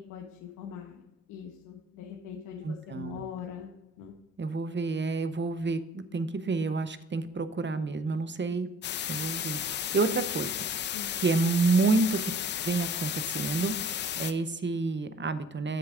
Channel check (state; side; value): normal; both; correlation 0.53